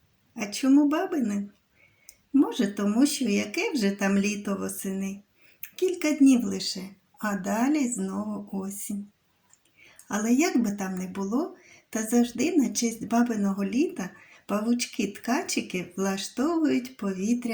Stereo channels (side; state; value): both; identical; correlation 1.00